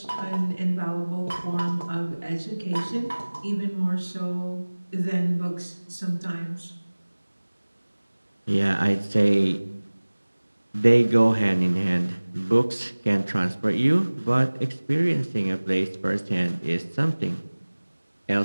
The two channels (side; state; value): both; inverted; correlation -1.00